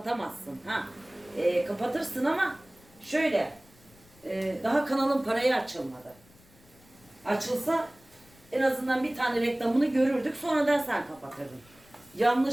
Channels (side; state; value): left; noise; rumble, 28 dB below the sound